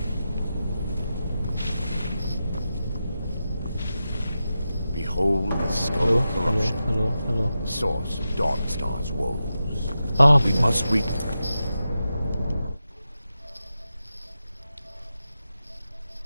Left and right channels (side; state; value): both; inverted; correlation -0.91